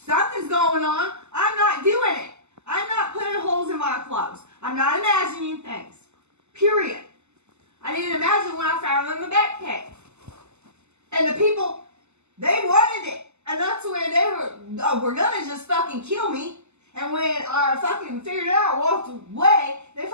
going on. I'm not doing it. I'm not putting holes in my clothes. I'm not imagining things. Period. I didn't imagine when I found them in the backpack. And the people, they wanted it. And that's when they were gonna just fucking kill me. And when I fucking figured it out, walked away, they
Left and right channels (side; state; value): left; late; 0.82 ms